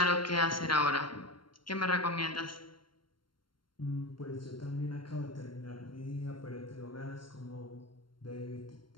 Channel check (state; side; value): late; right; 0.72 ms